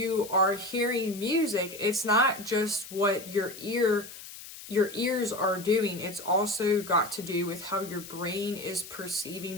are hearing music, it's not just what your ears are doing, it's also got to do with how your brain is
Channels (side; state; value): left; noise; hiss, 14 dB below the sound